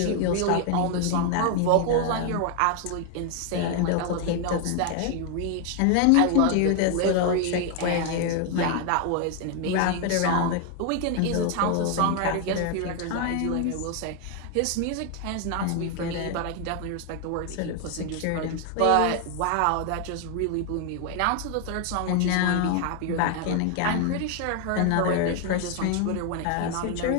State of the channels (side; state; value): both; different; correlation 0.01